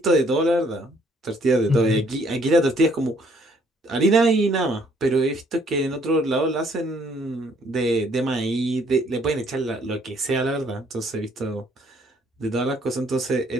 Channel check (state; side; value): normal; both; correlation 0.64